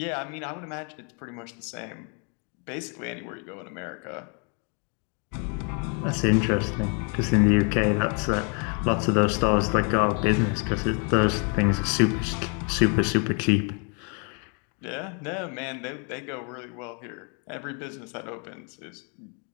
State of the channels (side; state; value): right; quieter; 38.1 dB